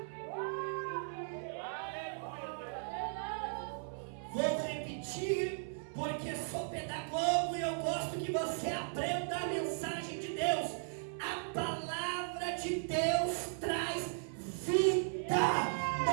Vou repetir, porque sou pedagogo e eu gosto que você aprenda a mensagem de Deus. A palavra de Deus traz vida.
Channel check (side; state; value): left; silent; 53 dB below the other